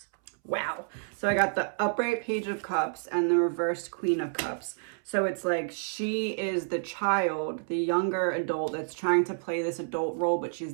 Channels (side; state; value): left; silent; 58 dB below the other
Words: Wow. So I got the upright page of cups and the reversed queen of cups. So it's like she is the child, the younger adult that's trying to play this adult role, but she's